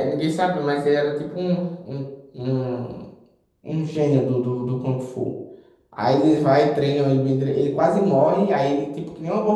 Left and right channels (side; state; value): both; identical; correlation 1.00